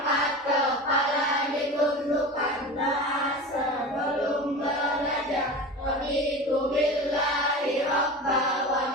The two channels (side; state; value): both; normal; correlation 0.30